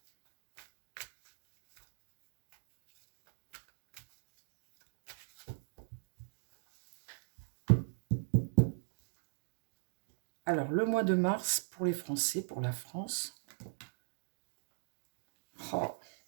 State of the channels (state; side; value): silent; left; digital silence